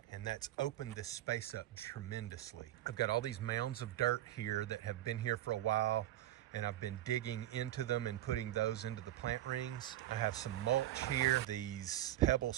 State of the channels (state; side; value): quieter; left; 14.0 dB